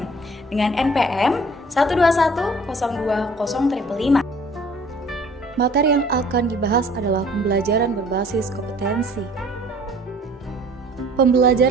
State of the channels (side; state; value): both; normal; correlation 0.52